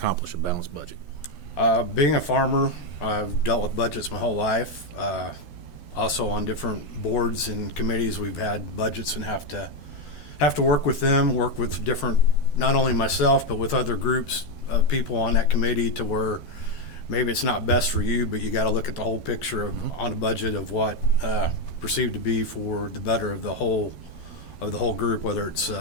a balanced budget? Being a farmer, I've dealt with budgets my whole life. Also on different boards and committees, we've had budgets and have to work with them, work with different, not only myself, but with other groups of people on that committee to where maybe it's not best for you, but you got to look at the whole picture on a budget of what perceived to be for the better of the whole group, whether it's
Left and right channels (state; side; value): late; right; 12 ms